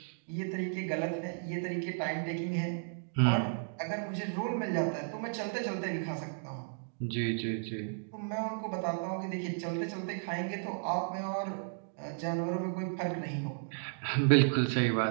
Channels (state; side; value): silent; left; digital silence